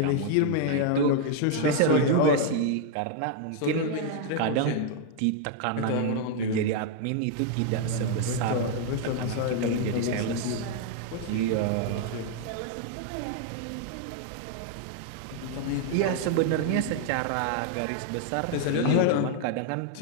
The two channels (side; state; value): both; different; correlation 0.00